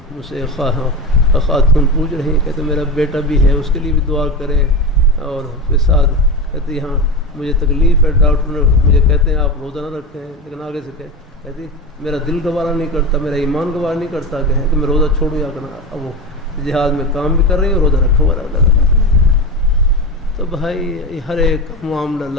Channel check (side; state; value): both; normal; correlation 0.22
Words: مجھ سے خاتون پوچھ رہی ہیں، کہتے میرا بیٹا بھی ہے، اس کے لیے بھی دعا کریں، اور پھر ساتھ کہتی ہاں مجھے تکلیف ہے، ڈاکٹر نے مجھے کہتے ہیں آپ روزہ نہ رکھیں، لیکن آگے سے کہتی میرا دل گوارا نہیں کرتا، میرا ایمان گوارا نہیں کرتا کہ میں روزہ چھوڑوں یا کرنا، اب وہ جہاد میں کام بھی کر رہی ہیں، روزہ رکھا ہوا اللہ۔ تو بھائی ہر ایک معاملہ